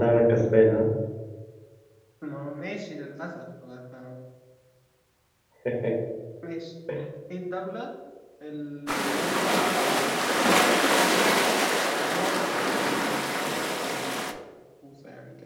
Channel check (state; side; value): identical; both; correlation 1.00